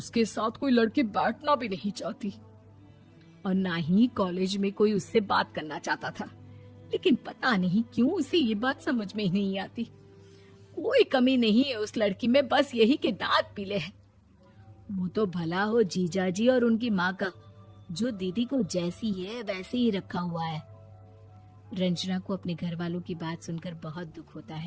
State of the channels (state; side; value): identical; both; correlation 1.00